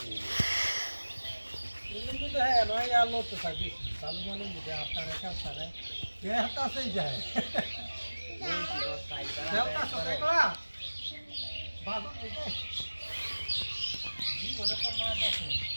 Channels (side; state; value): both; inverted; correlation -1.00